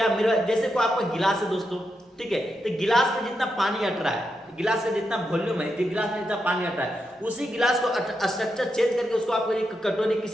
मेरा जैसे को आपका गिलास है दोस्तों, ठीक है, तो गिलास में जितना पानी अट रहा है, गिलास का जितना वॉल्यूम है, गिलास में जितना पानी अट रहा है, उसी गिलास को स्ट्रक्चर चेंज करके उसको आप एक कटोरी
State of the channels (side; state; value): both; normal; correlation 0.85